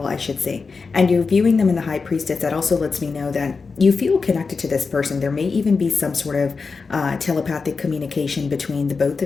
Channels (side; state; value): right; quieter; 4.7 dB